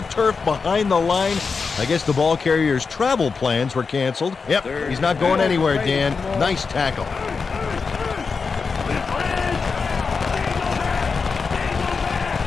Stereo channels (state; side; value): quieter; right; 5.0 dB